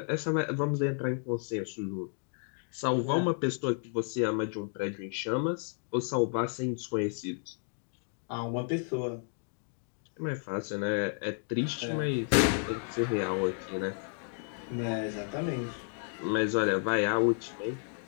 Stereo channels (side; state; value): right; silent; 56 dB below the other